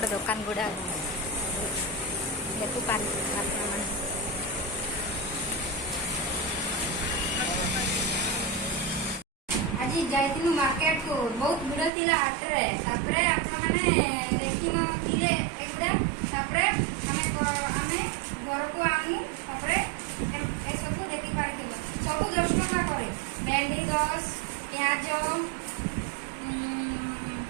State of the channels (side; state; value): left; drops out; at 11.9 s